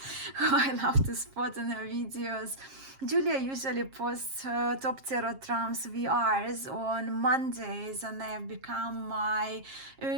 who I love to spot in her videos. Julia usually posts her Top Tarot Trumps VRs on Mondays, and they have become my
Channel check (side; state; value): left; late; 7.5 ms